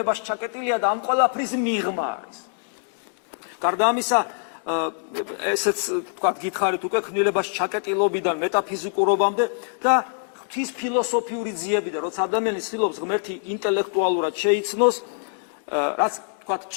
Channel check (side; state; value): right; silent; digital silence